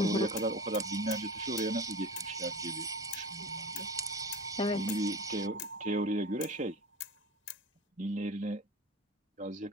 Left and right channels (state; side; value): normal; both; correlation 0.34